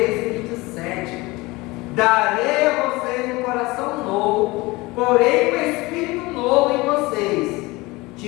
e 27. Darei a vocês um coração novo, porém um espírito novo em vocês.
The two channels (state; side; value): quieter; right; 22.1 dB